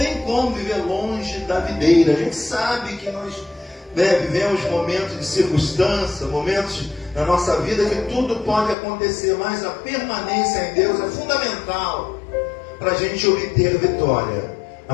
como viver longe da videira. A gente sabe que nós vivemos momentos de circunstância, momentos na nossa vida que tudo pode acontecer, mas a permanência em Deus é fundamental para a gente obter vitória.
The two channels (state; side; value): drops out; right; at 8.8 s